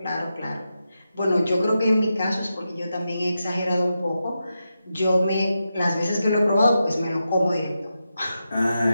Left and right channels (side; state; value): both; inverted; correlation -0.88